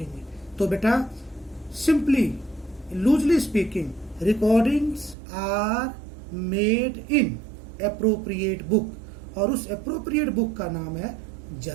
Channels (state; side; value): drops out; left; at 5.2 s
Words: तो बेटा simply loosely speaking, recordings are made in appropriate book, और उस एप्रोप्रिएट बुक का नाम है